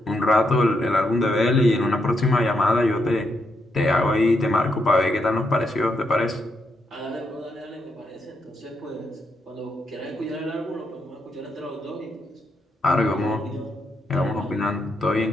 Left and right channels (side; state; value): both; normal; correlation 0.80